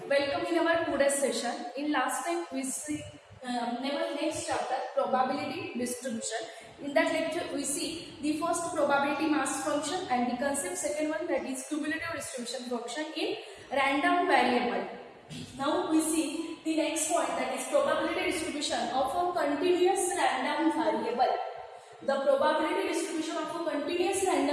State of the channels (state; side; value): identical; both; correlation 1.00